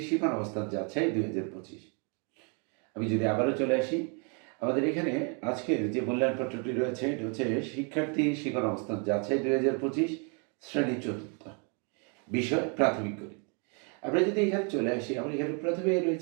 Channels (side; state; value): left; quieter; 37.0 dB